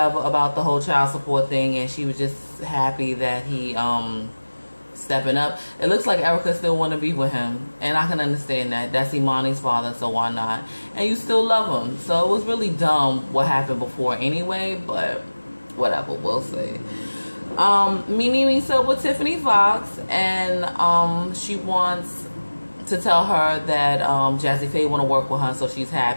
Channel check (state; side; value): inverted; both; correlation -1.00